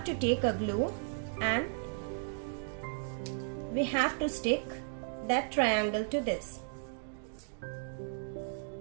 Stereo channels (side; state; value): left; silent; digital silence